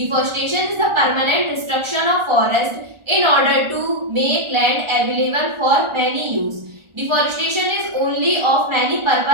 is the permanent destruction of forest in order to make land available for many use. Deforestation is only of many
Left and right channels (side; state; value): left; late; 1.4 ms